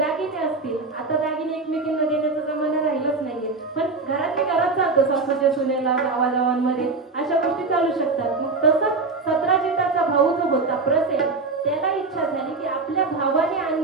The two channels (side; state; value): left; quieter; 3.9 dB